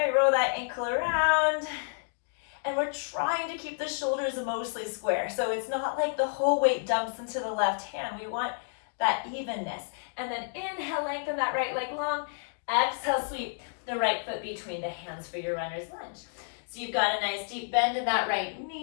roll that ankle around. And we're trying to keep the shoulders mostly square. So it's not like the whole weight dumps into the left hand. We want that evenness. And then inhale, lengthen that right leg long. Exhale, sweep the right foot between the hands for your runner's lunge. So you've got a nice deep bend in that right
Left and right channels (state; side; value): silent; right; digital silence